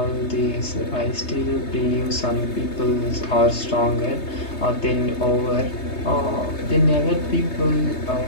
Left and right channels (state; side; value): late; right; 3.2 ms